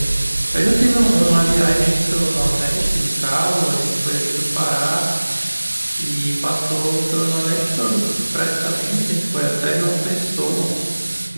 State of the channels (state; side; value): inverted; both; correlation -1.00